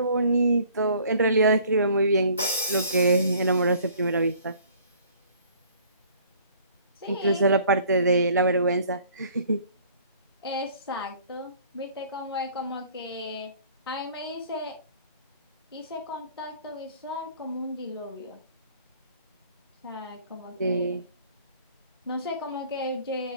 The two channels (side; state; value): both; inverted; correlation -0.55